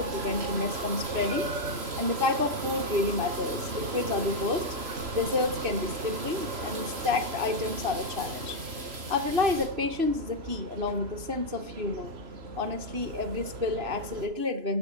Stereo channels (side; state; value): left; late; 3.0 ms